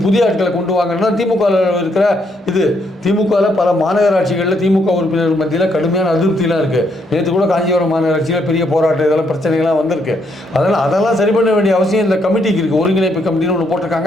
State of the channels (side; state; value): both; normal; correlation 0.74